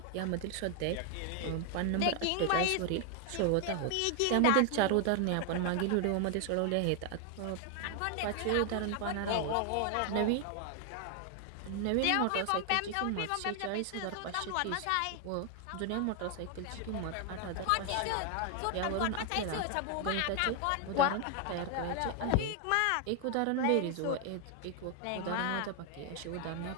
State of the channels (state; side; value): different; both; correlation 0.00